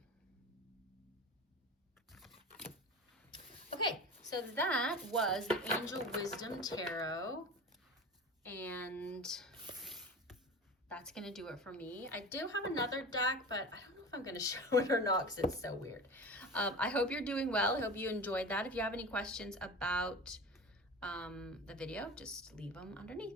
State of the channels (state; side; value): normal; both; correlation 0.32